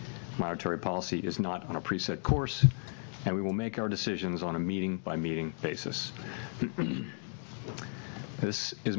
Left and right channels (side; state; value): right; silent; 55 dB below the other